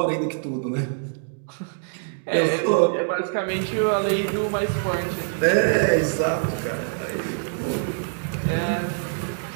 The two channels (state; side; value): silent; left; digital silence